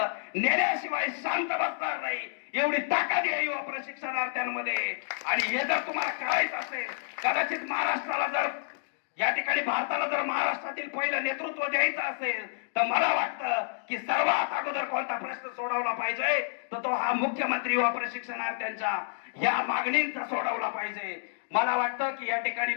नेल्याशिवाय शांत बसणार नाही, एवढी ताकद आहे युवा प्रशिक्षणार्थ्यांमध्ये. आणि हे जर तुम्हाला करायचं असेल, कदाचित महाराष्ट्राला जर या ठिकाणी भारताला जर महाराष्ट्रातील पहिलं नेतृत्व द्यायचं असेल तर मला वाटतं की सर्वात अगोदर कोणता प्रश्न सोडवला पाहिजे तर तो हा मुख्यमंत्री युवा प्रशिक्षणार्थ्यांच्या या मागणींचा सोडवला पाहिजे. मला वाटतं की या ठिकाणी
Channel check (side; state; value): right; silent; digital silence